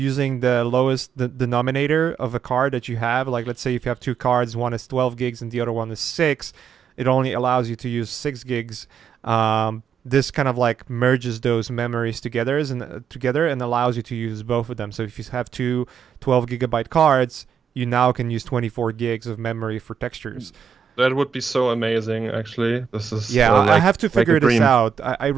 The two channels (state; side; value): quieter; left; 7.2 dB